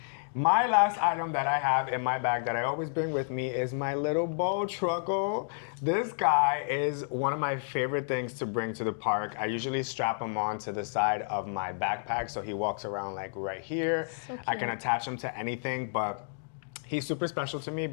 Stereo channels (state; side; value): silent; right; digital silence